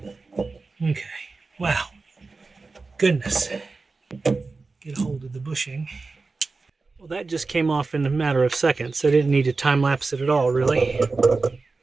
Okay, wow, goodness. Get a hold of the bushing. Well, that just came off in a matter of seconds. I didn't need to time lapse it at all, really.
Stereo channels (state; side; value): quieter; left; 3.9 dB